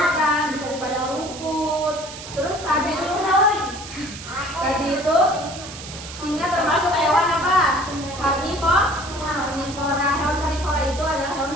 bisa di padang rumput. Terus tadi itu singa termasuk hewan apa? Karnivora. Hewan karnivora itu adalah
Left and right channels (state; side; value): noise; right; hiss, 12 dB below the sound